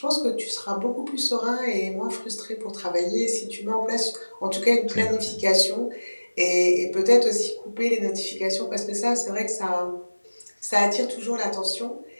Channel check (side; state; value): both; inverted; correlation -1.00